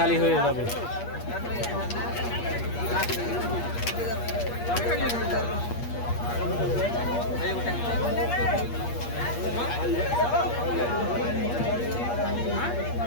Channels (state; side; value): late; right; 8.5 ms